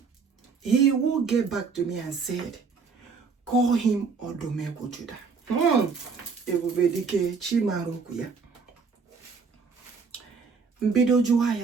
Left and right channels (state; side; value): quieter; left; 5.1 dB